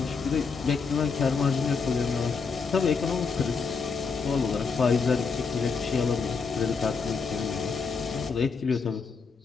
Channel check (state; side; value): quieter; right; 5.2 dB